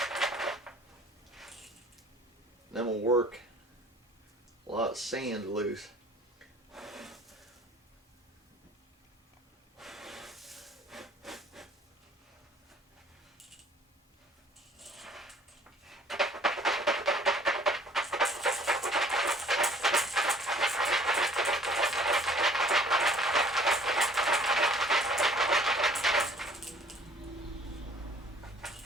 Then we'll work a lot of sand loose.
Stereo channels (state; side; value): normal; both; correlation 0.55